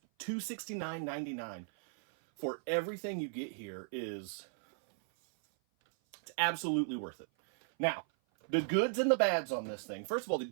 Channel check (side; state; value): left; silent; 54 dB below the other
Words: $269.99 for everything you get here it's absolutely worth it. Now, the goods and the bads on this thing. First of all, the